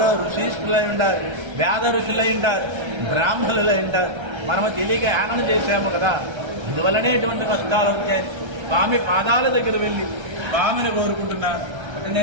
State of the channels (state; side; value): late; left; 1.3 ms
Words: ఋషిష్ఠులై ఉంటారు, వేద ఋషులై ఉంటారు, బ్రాహ్మణులై ఉంటారు, మనము తెలియక యానం చేశాము కదా, అందువల్లనే ఇటువంటి కష్టాలు వచ్చాయి. స్వామి పాదాల దగ్గర వెళ్ళి స్వామిని కోరుకుంటున్నారు. అంటే